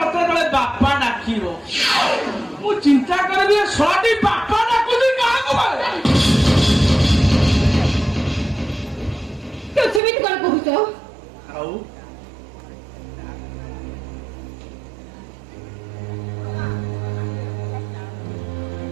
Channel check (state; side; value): drops out; left; at 10.0 s